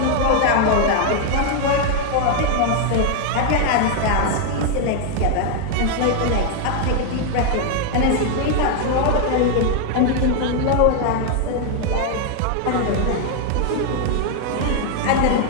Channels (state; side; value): different; both; correlation 0.00